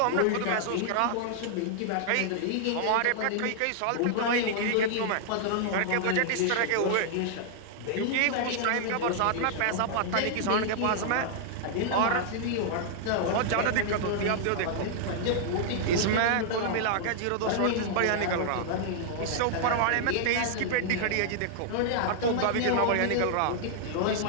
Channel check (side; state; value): both; different; correlation -0.01